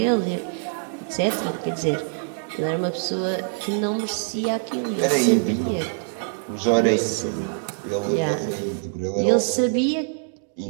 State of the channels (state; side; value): silent; left; 62 dB below the other